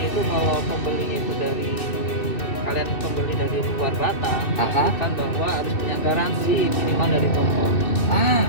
itu kalau pembelinya itu dari kalian pembeli dari luar Batam, pastikan bahwa harus punya garansi minimal dari toko.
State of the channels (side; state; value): right; late; 2.6 ms